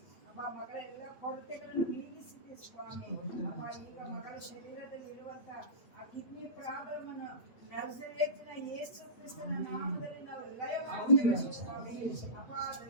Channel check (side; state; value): right; late; 8.4 ms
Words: ಅಪ್ಪ. ಮಗಳ ಎಲ್ಲ ಕೊರತೆಗಳನ್ನು ನೀಗಿಸಿದ್ದಿ ಸ್ವಾಮಿ ಅಪ್ಪ. ಈಗ ಮಗಳ ಶರೀರದಲ್ಲಿ ಇರುವಂತ ಆ ಕಿಡ್ನಿ ಪ್ರಾಬ್ಲಮ್ ಅನ್ನು ನಜರೇತಿನ ಯೇಸು ಕ್ರಿಸ್ತನ ನಾಮದಲ್ಲಿ ನಾವು ಲಯ ಮಾಡುತ್ತೇವೆ ಸ್ವಾಮಿ ಅಪ್ಪ.